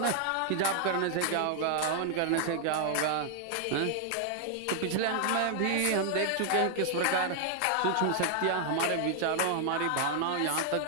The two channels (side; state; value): both; different; correlation 0.00